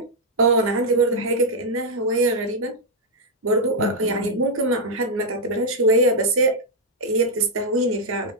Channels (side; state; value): both; normal; correlation -0.05